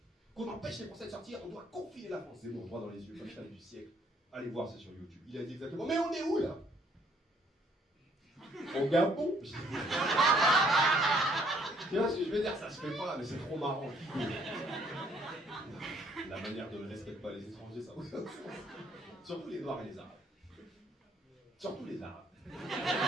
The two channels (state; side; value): normal; both; correlation 0.65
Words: Qu'on empêche les Français de sortir, on doit confiner la France. Zemmour, droit dans les yeux, punchline du siècle. Allez voir, c'est sur YouTube. Il a dit exactement, mais on est où là? Au Gabon. Tu vois ce que je veux dire? Ça se fait pas, mais c'est trop marrant. La manière dont on ne respecte pas les étrangers, ça. Surtout les Noirs et les Arabes. Surtout les Arabes.